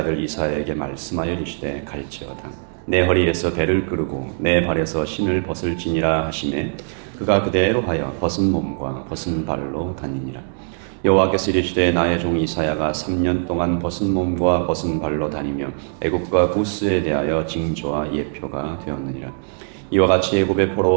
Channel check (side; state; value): left; silent; 58 dB below the other